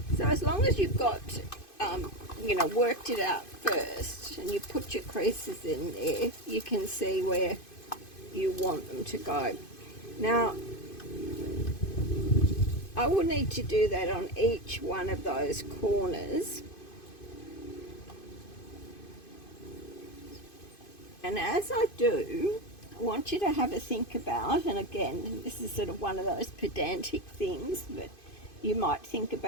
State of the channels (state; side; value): late; right; 2.5 ms